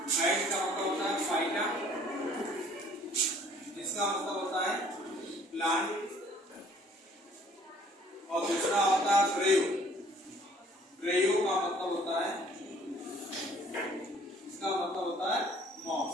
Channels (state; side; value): normal; both; correlation 0.57